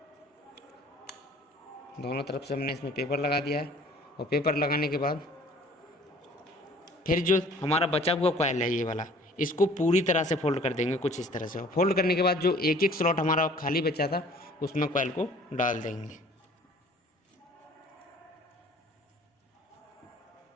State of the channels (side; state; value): both; normal; correlation 0.52